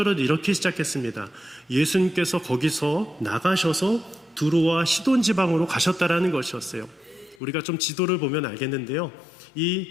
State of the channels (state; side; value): drops out; right; at 7.4 s